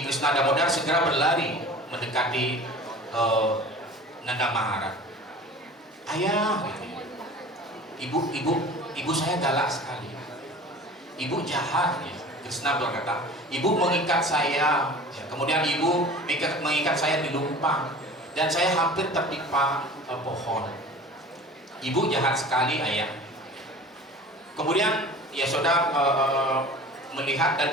Krishna Damodar segera berlari mendekati Nanda Maharaj. Ayah, ibu saya galak sekali. Ibu jahat, ya. Krishna berkata, ibu mengikat saya, ya. Kemudian ibu mengikat saya di lumpang, dan saya hampir tertimpa pohon. Ibu jahat sekali, ayah. Kemudian Yasoda melihat dan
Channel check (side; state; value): both; normal; correlation 0.41